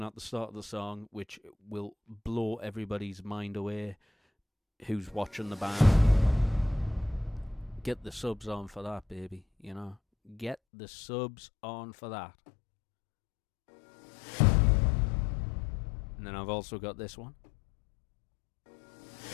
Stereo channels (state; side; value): drops out; right; at 10.6 s